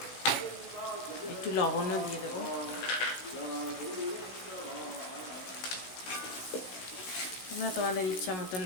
একটু লবণও দিয়ে দেবো। তোমরা তোমাদের ইচ্ছা মতন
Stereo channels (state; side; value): late; right; 16 ms